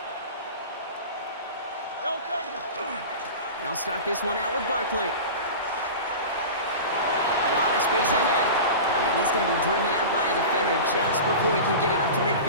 They'll start this one out with Barkley. A lot of space ahead. And he's going to be driven out by a defender just before he can get it up to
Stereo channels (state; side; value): inverted; both; correlation -0.31